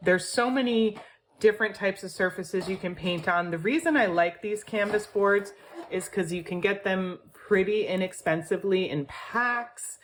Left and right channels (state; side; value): identical; both; correlation 1.00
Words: There's so many different types of surfaces you can paint on. The reason I like these canvas boards is because you can get them pretty inexpensively in packs,